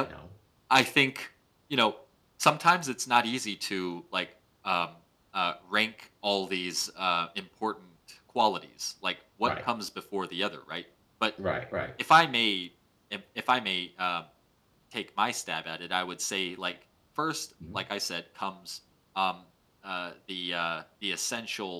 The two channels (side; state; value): both; identical; correlation 1.00